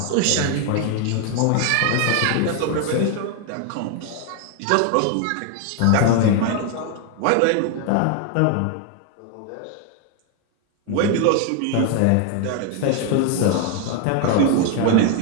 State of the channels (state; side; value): different; both; correlation 0.01